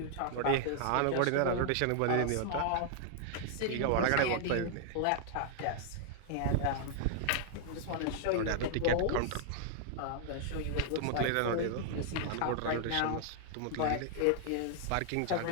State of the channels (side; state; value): both; different; correlation 0.00